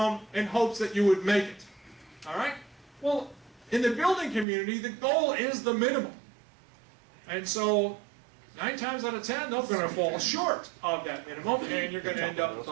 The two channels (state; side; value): drops out; left; at 4.5 s